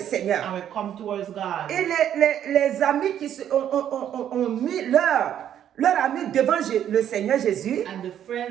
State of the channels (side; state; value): left; quieter; 10.2 dB